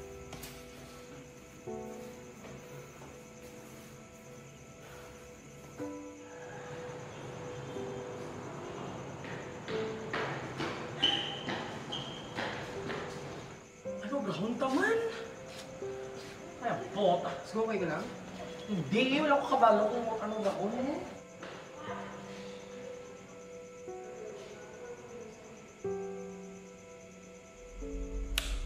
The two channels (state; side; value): identical; both; correlation 1.00